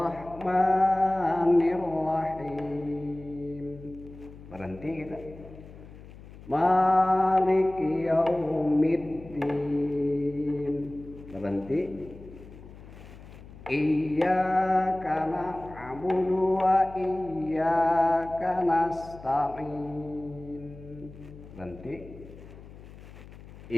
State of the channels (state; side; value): noise; left; hum, 18 dB below the sound